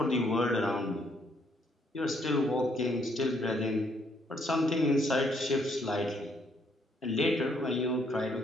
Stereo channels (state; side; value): normal; both; correlation 0.70